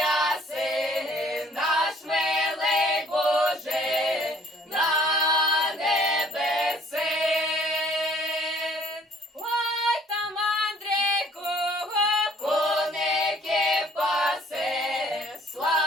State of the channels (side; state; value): both; normal; correlation 0.58